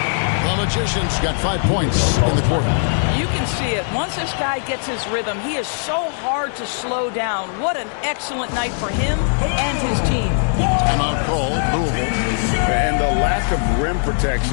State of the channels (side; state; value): right; silent; digital silence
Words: The Magician's got 5 points in the quarter. You can see it. Once this guy gets his rhythm, he is so hard to slow down. What an excellent night for him and his team. Timeout call, Louisville. And the lack of rim